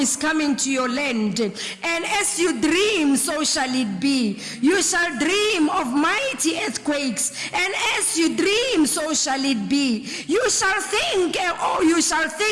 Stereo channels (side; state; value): both; identical; correlation 1.00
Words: coming to your land, and as you dream, so shall it be. You shall dream of mighty earthquakes, and as you dream, so shall it be. You shall think, you shall